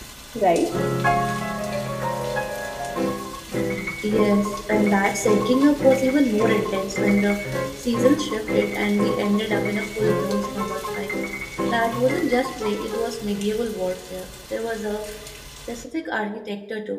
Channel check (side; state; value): both; identical; correlation 1.00